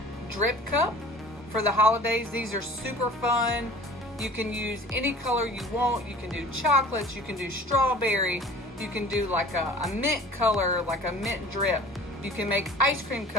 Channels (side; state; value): both; normal; correlation 0.45